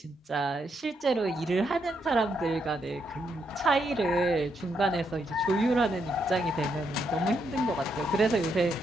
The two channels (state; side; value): normal; both; correlation 0.79